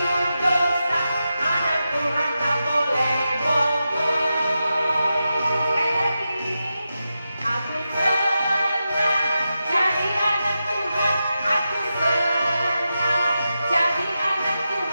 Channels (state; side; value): inverted; both; correlation -0.90